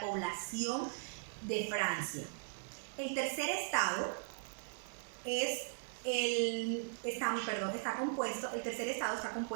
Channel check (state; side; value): silent; left; digital silence